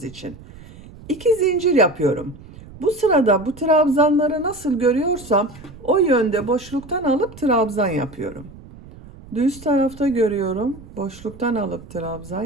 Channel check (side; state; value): right; noise; rumble, 19 dB below the sound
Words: için. 2 zincir yapıyorum. Bu sırada bu trabzanları nasıl görüyorsam o yönde boşluktan alıp trabzan yapıyorum. Düz tarafta görüyorum, boşluktan alıp trabzan